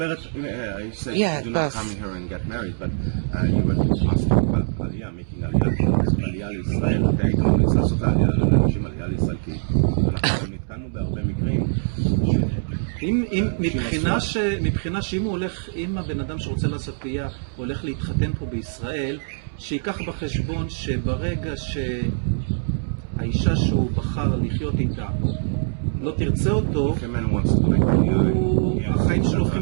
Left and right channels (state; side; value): silent; left; 63 dB below the other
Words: said do not come here and get married, but you were asking about Aliyah, making Aliyah לישראל, אתה היית ממליץ לעשות Aliyah לאנשים Aliyah לישראל, כי אנחנו נתקענו בהרבה מקרים. מבחינה שאם הוא הולך, אם הבן אדם שרוצה לעשות Aliyah הולך להתחתן פה בישראל, שיקח בחשבון שברגע שהאישה שהוא בחר לחיות איתה לא תרצה אותו, החיים שלו